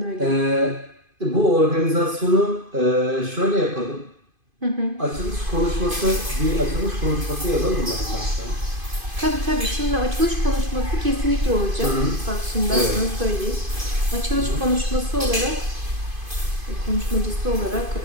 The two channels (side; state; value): left; late; 2.5 ms